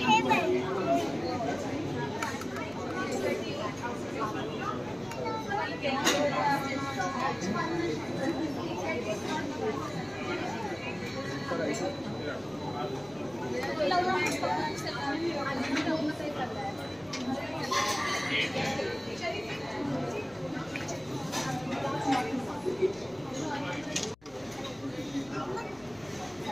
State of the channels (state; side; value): noise; left; hum, 28 dB below the sound